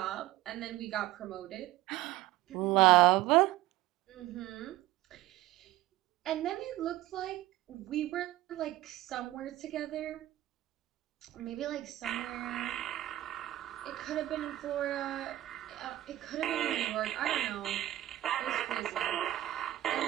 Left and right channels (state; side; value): quieter; left; 15.5 dB